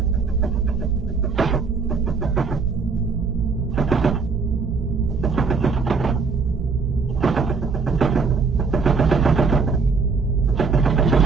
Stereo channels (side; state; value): left; quieter; 4.8 dB